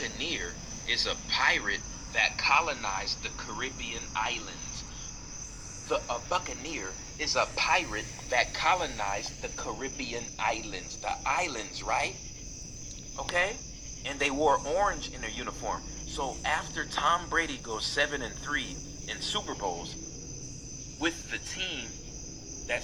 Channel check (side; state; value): both; identical; correlation 1.00